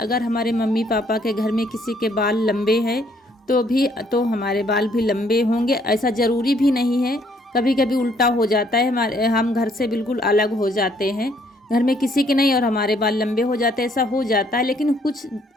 हमारे मम्मी पापा के घर में किसी के बाल लंबे हैं तो हमारे बाल भी लंबे होंगे, ऐसा ज़रूरी भी नहीं है। कभी कभी उल्टा हो जाता है, हम घर से बिल्कुल अलग हो जाते हैं, घर में किसी के नहीं, और हमारे बाल लंबे हो जाते हैं, ऐसा हो जाता है। लेकिन कुछ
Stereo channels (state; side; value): normal; both; correlation 0.66